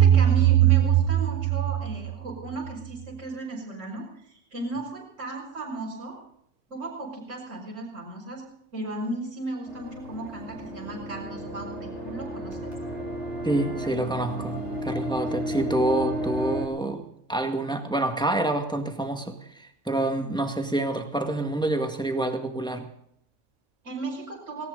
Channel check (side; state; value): left; quieter; 4.7 dB